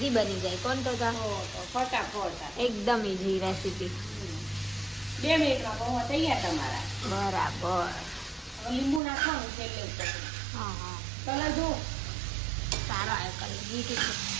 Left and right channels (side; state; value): left; drops out; at 9.0 s